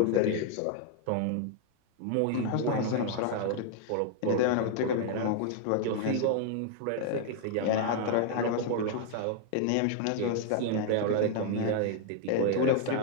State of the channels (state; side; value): different; both; correlation 0.00